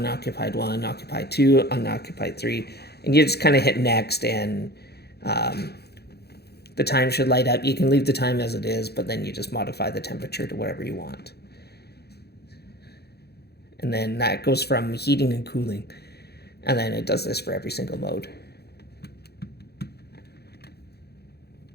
1, occupied 2, unoccupied 3. And you just kind of hit next, and the time should light up. You can leave the time as it is, but then you just modify the temperature to whatever you want. And then that goes from heating and cooling. And then it does this for every single mode.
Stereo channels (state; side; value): late; right; 0.47 ms